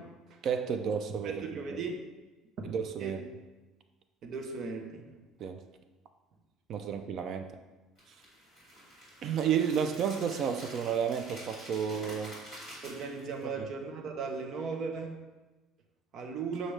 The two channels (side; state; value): left; quieter; 6.4 dB